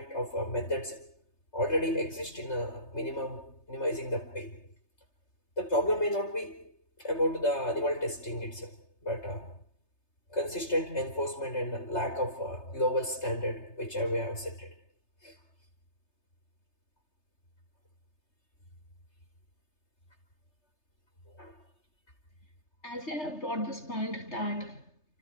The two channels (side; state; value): right; late; 3.3 ms